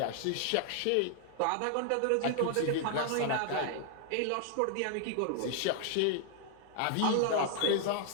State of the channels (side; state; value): both; different; correlation 0.00